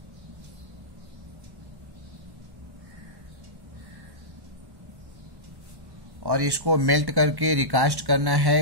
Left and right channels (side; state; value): left; late; 1.1 ms